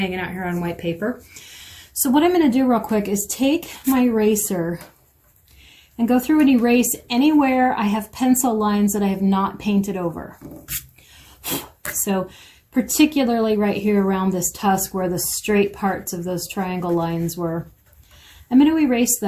out here on white paper. So what I'm going to do real quick is take my eraser and go through and erase anywhere I have pencil lines that I have not painted over. So particularly right here around this tusk where the straight parts of those triangle lines were. I'm going to erase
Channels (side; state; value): both; identical; correlation 1.00